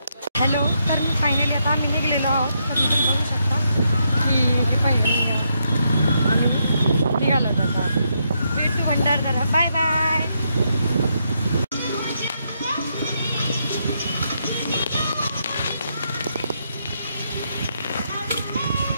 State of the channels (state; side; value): inverted; both; correlation -0.79